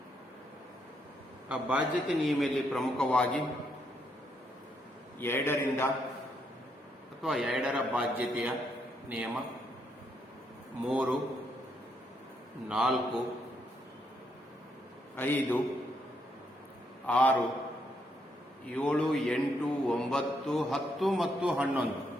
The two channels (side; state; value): both; normal; correlation 0.76